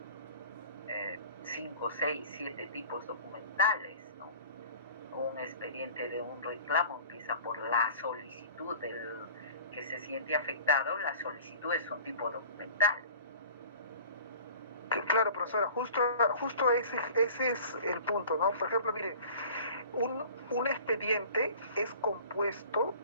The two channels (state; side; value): inverted; both; correlation -0.44